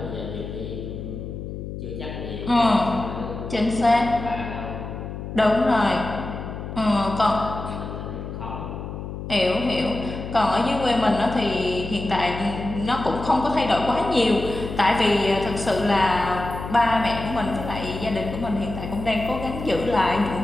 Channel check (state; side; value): noise; left; hum, 8 dB below the sound